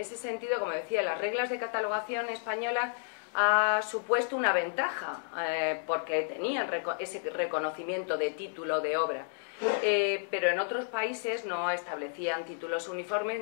sentido, como decía, las reglas de catalogación españolas ha supuesto una ventaja porque tenían ese reconocimiento de título de obra, pero en otros países no establecían títulos uniformes,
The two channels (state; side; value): silent; right; digital silence